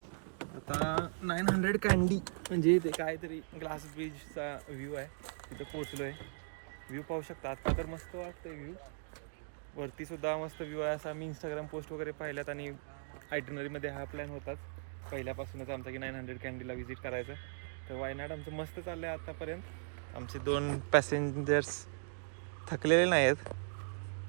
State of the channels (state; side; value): silent; left; digital silence